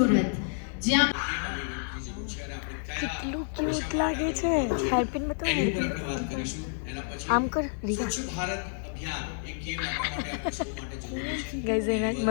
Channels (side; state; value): right; silent; digital silence